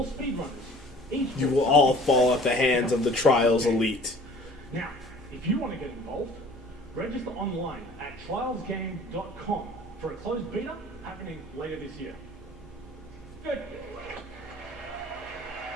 speedrunners, each You will all fall at the hands of the Trials Elite. Now, if you want to get involved, register online at trialsgame.com for a closed beta happening later this year. Good.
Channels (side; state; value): both; normal; correlation 0.49